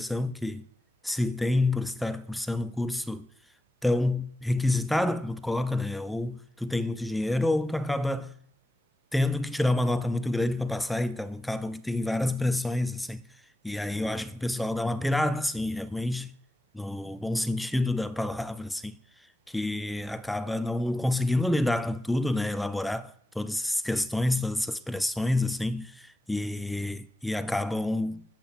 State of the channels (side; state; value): both; normal; correlation 0.93